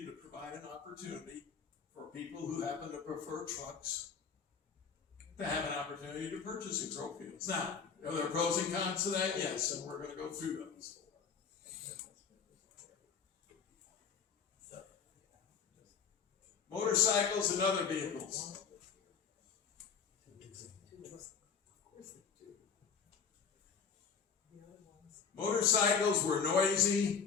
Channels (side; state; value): right; quieter; 6.3 dB